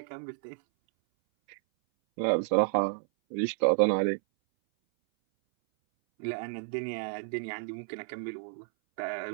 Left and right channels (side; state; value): left; silent; 57 dB below the other